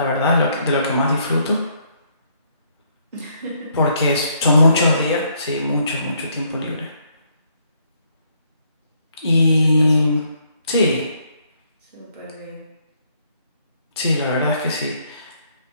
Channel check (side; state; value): both; inverted; correlation -0.70